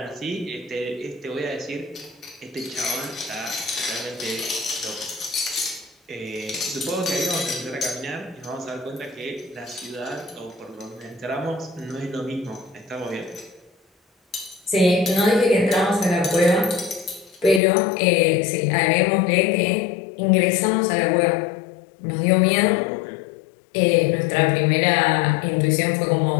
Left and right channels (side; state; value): right; drops out; at 17.6 s